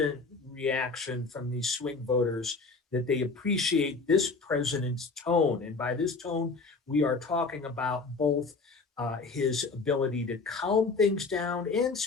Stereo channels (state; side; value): quieter; right; 4.1 dB